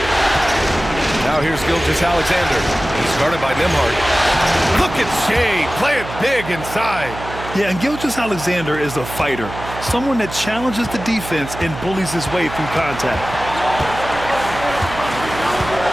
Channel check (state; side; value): noise; right; hum, 11 dB below the sound